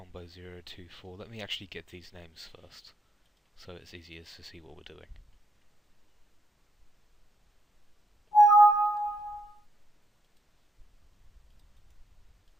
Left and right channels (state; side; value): normal; both; correlation 0.77